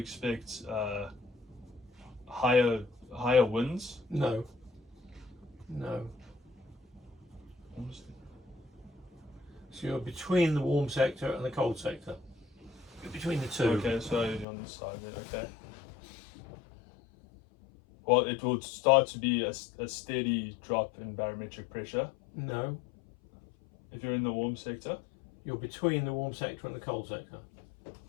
higher winds. no. So you're between the warm sector and the cold sector. You're between the two. Okay, so you're on the side there. Okay. Well, it will start to be a steady drop in barometric pressure No. if you're in the warm sector. You're between the warm sector and the cold sector.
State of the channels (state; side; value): drops out; right; at 14.5 s